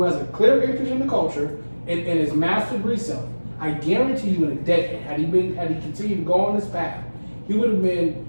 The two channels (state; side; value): inverted; both; correlation -1.00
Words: has a clear interest in the culture and is mastered reselling. I guarantee you, in a decade, had he continued to go on this path, he would